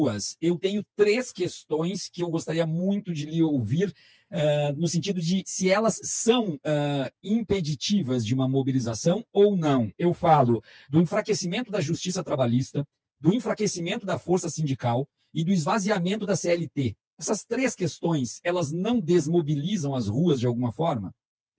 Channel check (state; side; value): identical; both; correlation 1.00